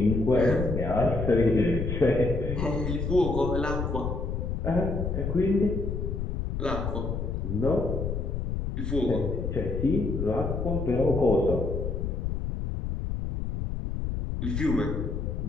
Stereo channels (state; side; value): noise; left; rumble, 2 dB below the sound